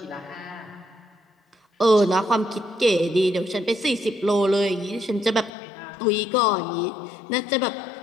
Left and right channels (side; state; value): right; drops out; at 5.5 s